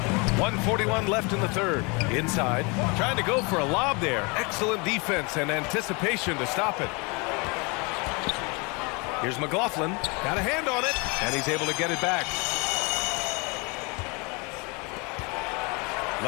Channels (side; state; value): right; quieter; 29.7 dB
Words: 1:41 left in the third. Inside. Trying to go for a lob there. Excellent defense and anticipation to stop it. Here's McLaughlin. Got a hand on it. And he's able to get it back.